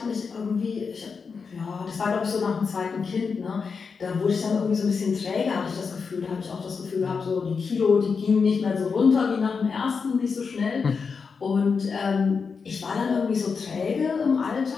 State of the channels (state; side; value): quieter; right; 5.4 dB